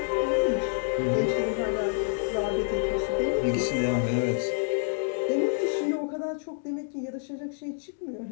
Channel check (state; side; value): silent; right; digital silence